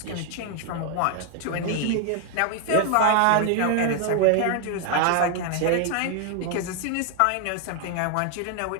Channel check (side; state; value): both; different; correlation 0.01